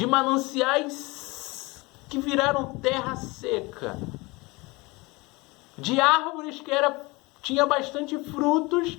mananciais que viraram terra seca, de árvores que tinha bastante frutos,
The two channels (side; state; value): right; quieter; 24.4 dB